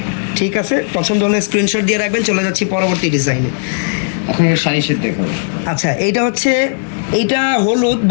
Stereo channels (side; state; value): right; silent; 63 dB below the other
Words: ঠিক আছে, পছন্দ হলে স্ক্রিনশট দিয়ে রাখবেন। চলে যাচ্ছি পরবর্তী ডিজাইনে। এখন শাড়ি সেট দেখাবো। আচ্ছা, এইটা হচ্ছে, এইটা হলুদ,